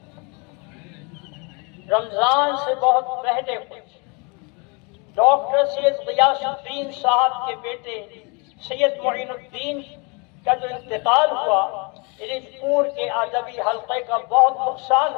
رمضان سے بہت پہلے کچھ ڈاکٹر سید غیاث الدین صاحب کے بیٹے سید معین الدین کا جو انتقال ہوا، رج پور کے ادبی حلقے کا بہت نقصان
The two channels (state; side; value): quieter; right; 31.8 dB